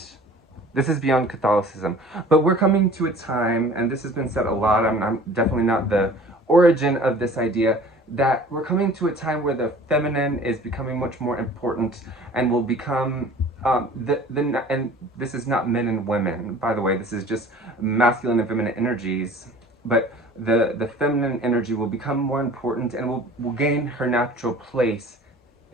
Catholicism, but we're coming to a time, and this has been said a lot. I'm definitely not the origin of this idea, that we're coming to a time where the feminine is becoming much more important and will become and this is not men and women, by the way. This is just masculine and feminine energies, but the feminine energy will become more important and will gain her natural place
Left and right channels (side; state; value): both; normal; correlation 0.46